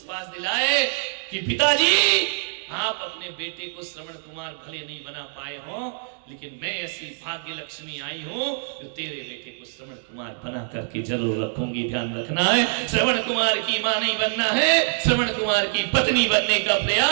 दिलाए कि पिताजी, आप अपने बेटे को श्रवण कुमार भले नहीं बना पाए हो, लेकिन मैं ऐसी भाग्य लक्ष्मी आई हूं जो तेरे बेटे को श्रवण कुमार बना करके जरूर रखूंगी। ध्यान रखना है, श्रवण कुमार की मां नहीं बनना है, श्रवण कुमार की पत्नी बनने का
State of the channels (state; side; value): silent; left; digital silence